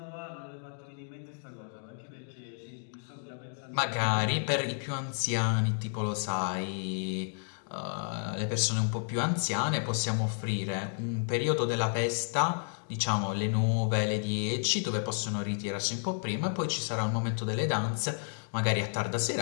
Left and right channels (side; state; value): right; silent; 57 dB below the other